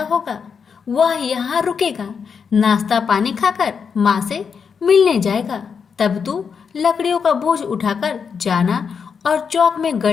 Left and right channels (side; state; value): right; quieter; 6.3 dB